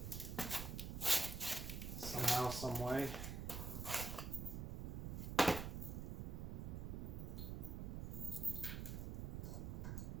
somehow, some way.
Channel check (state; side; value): noise; right; rumble, 4 dB below the sound